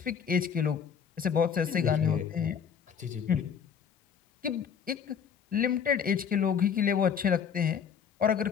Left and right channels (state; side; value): quieter; right; 7.3 dB